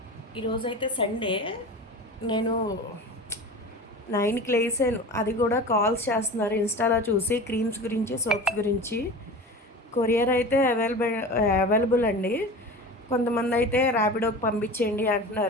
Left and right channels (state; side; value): normal; both; correlation 0.33